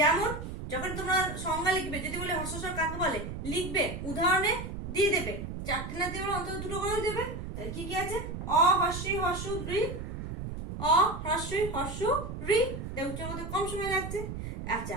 যখন তোমরা সংজ্ঞা লিখবে, যদি বলে হ্রস্বস্বর কাকে বলে, লিখবে উদাহরণে দিয়ে দেবে, চারটে না দিয়ে অন্তত দুটো করে দেবে। তাহলে কি কি আছে? অ হস্যি হস্যু ঋ, অ হ্রস্বই হস্যু ঋ। উচ্চারণ করতে কম সময় লাগছে।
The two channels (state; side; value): noise; right; rumble, 7 dB below the sound